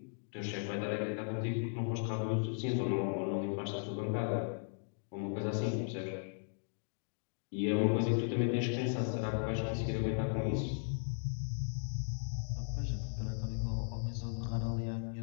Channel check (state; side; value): silent; right; digital silence